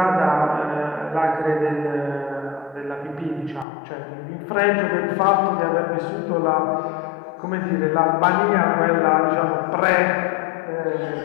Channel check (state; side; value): drops out; right; at 3.7 s